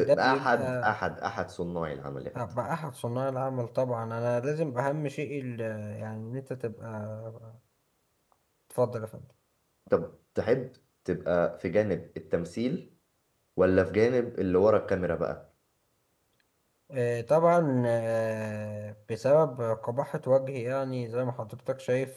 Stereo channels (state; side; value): identical; both; correlation 1.00